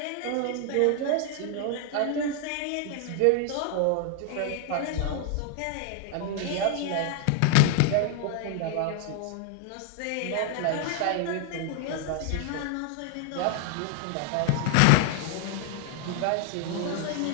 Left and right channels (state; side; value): different; both; correlation 0.00